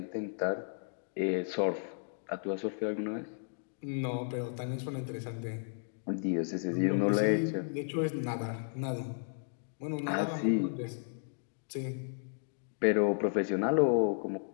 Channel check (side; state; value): right; silent; digital silence